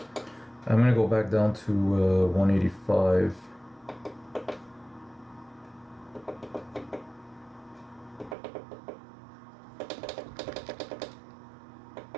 I'm gonna go back down to 185.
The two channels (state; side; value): drops out; left; at 8.3 s